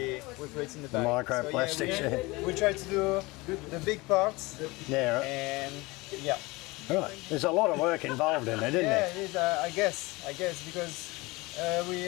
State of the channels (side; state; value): right; quieter; 23.1 dB